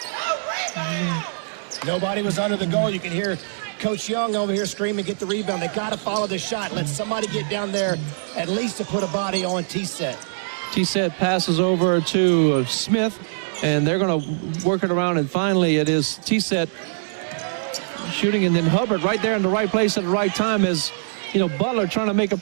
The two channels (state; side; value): silent; left; digital silence